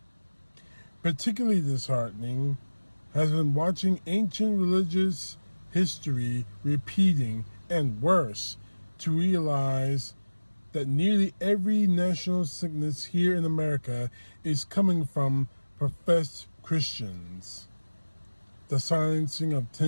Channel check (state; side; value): inverted; both; correlation -1.00